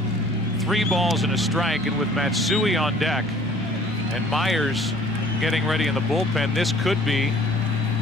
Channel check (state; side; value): normal; both; correlation 0.53